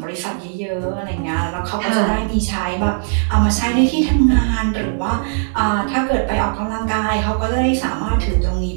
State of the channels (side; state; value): left; silent; digital silence